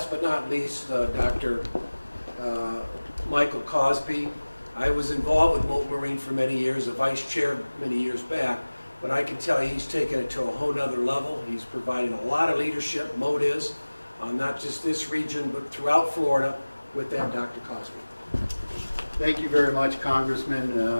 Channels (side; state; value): both; inverted; correlation -1.00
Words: but not least, Dr. Michael Cosby. I was involved with Moat Marine for many years, a vice chair many years back, but I can tell you he's taken it to a whole nother level. He's providing a lot of leadership, Moat is, not just this region, but throughout Florida. With that, Dr. Cosby. Thank you very much,